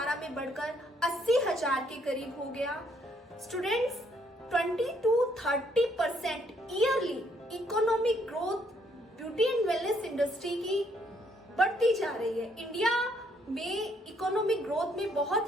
में बढ़कर 80,000 के करीब हो गया. Students, 20-30% yearly economic growth beauty and wellness industry की बढ़ती जा रही है. इंडिया में इकोनॉमिक ग्रोथ में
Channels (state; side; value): normal; both; correlation 0.69